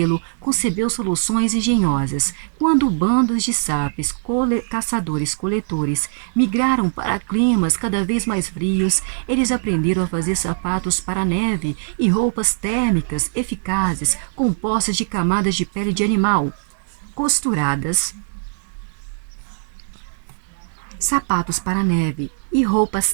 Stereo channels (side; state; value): left; silent; digital silence